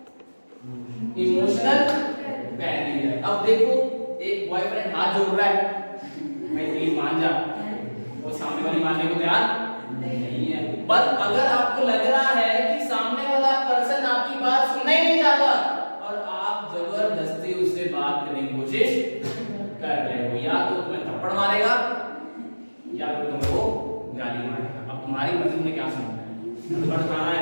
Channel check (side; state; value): both; inverted; correlation -1.00